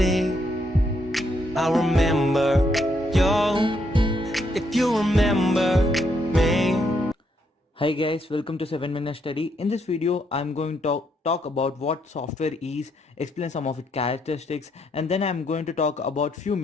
I'll remember you if you remember me. Hi guys, welcome to 7-Minute Study. In this video, I'm going to talk about what software is, explain some of its characteristics, and then I'm going to talk about few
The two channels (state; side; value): normal; both; correlation 0.75